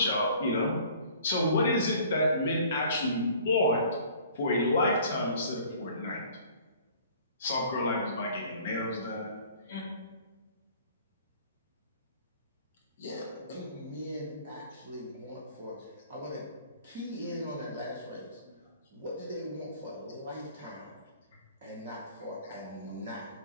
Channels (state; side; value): inverted; both; correlation -0.51